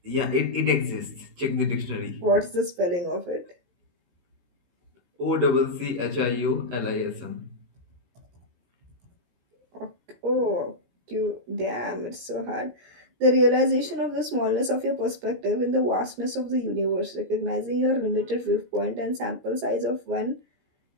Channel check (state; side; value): late; left; 17 ms